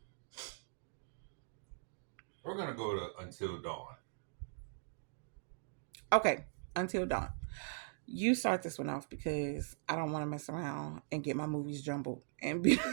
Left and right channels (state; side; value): silent; left; digital silence